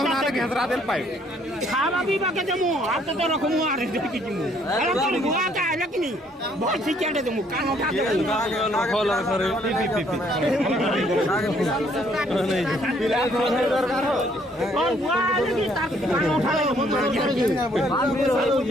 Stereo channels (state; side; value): normal; both; correlation 0.65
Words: না ঘেসরা দেল পাই খাবা বিবা কে দেমু হাতে তো রকম আর দেখি দিমু আলা তোর বুয়া কা লকিনি বহুত সিকেটে দেমু কান উঠা ফল করে পি नहीं पिला दरकार हो और बुआ लगी ताक कान उठा ले